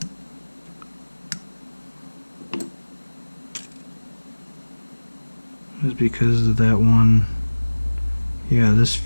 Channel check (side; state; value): both; inverted; correlation -1.00